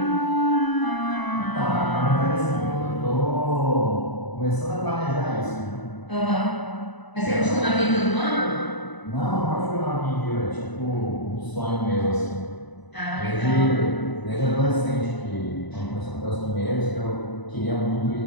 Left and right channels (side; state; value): right; late; 1.0 ms